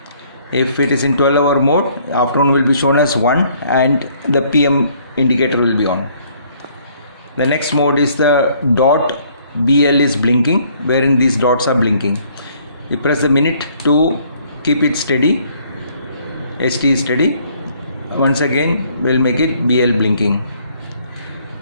If it is in 12-hour mode, afternoon will be shown as 1 and the PM indicator will be on. The next mode is the dot. BL is blinking, wherein these dots are blinking. You press the minute to keep it steady. ST is steady. Once again we'll make it BL blinking.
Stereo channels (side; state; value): both; inverted; correlation -0.63